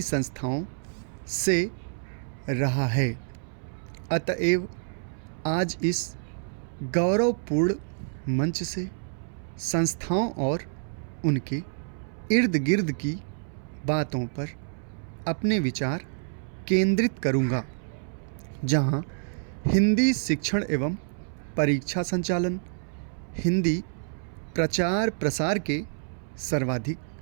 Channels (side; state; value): left; silent; 59 dB below the other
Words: संस्थाओं से रहा है। अतएव आज इस गौरवपूर्ण मंच से संस्थाओं और उनके इर्द गिर्द की बातों पर अपने विचार केंद्रित करूंगा, जहां हिंदी शिक्षण एवं परीक्षा संचालन, हिंदी प्रचार प्रसार के सर्वाधिक